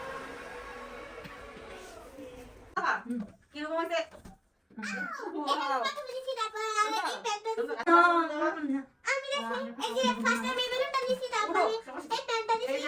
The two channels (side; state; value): both; identical; correlation 1.00